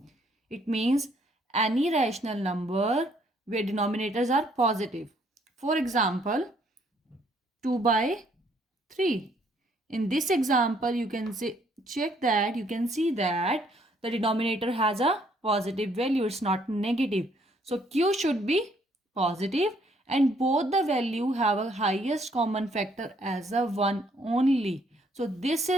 It means any rational number where denominators are positive. For example, 2 by 3. In this example, you can check that you can see that the denominator has a positive value. It's not negative. So q should be positive and both the value have a highest common factor as a 1 only. So this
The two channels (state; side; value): normal; both; correlation 0.66